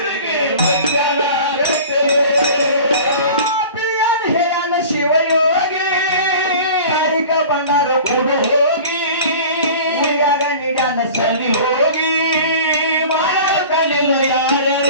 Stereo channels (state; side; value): inverted; both; correlation -0.40